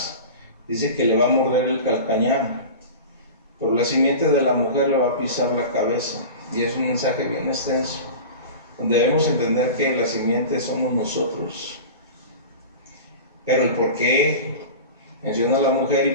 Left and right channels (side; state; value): both; inverted; correlation -0.32